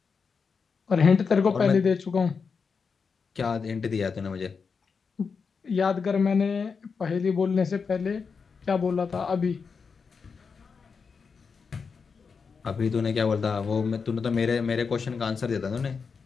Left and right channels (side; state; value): right; quieter; 5.5 dB